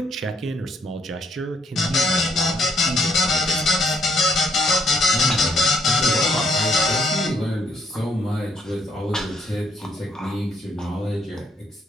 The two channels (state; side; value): normal; both; correlation 0.70